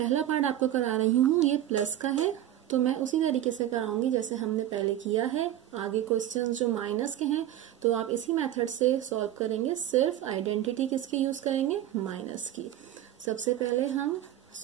पार्ट आपको करा रही हूँ, ये प्लस का है तो मैं उसी तरीके से कराऊंगी जैसे हमने पहले किया है। आगे क्वेश्चंस जो माइनस के हैं तो आप इसी मेथड से सॉल्व करेंगे, सिर्फ आइडेंटिटी किसकी यूज करेंगे माइनस की। सबसे पहले हम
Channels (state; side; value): quieter; left; 12.3 dB